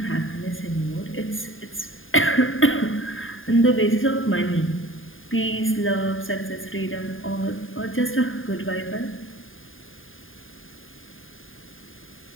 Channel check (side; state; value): right; late; 0.59 ms